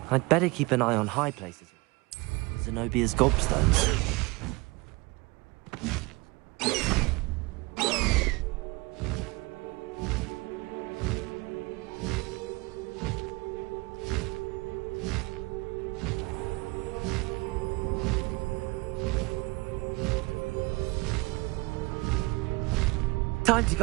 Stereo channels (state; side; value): quieter; left; 24.8 dB